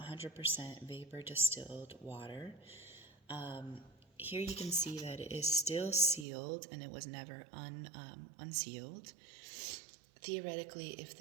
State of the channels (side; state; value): left; drops out; at 6.2 s